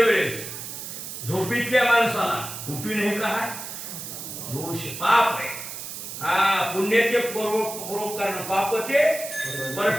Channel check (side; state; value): right; noise; hiss, 9 dB below the sound